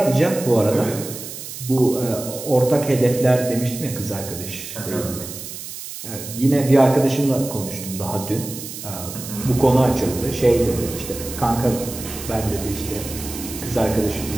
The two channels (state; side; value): noise; right; hiss, 10 dB below the sound